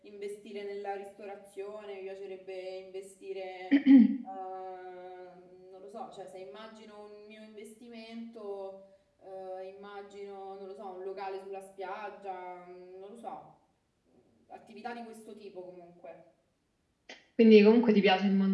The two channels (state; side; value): identical; both; correlation 1.00